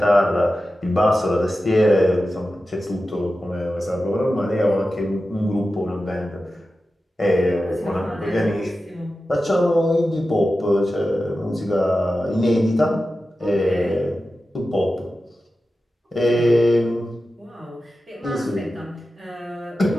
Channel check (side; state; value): both; normal; correlation 0.93